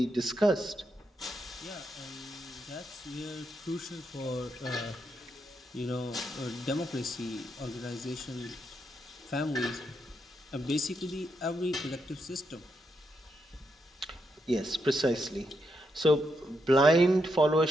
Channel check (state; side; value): normal; both; correlation 0.81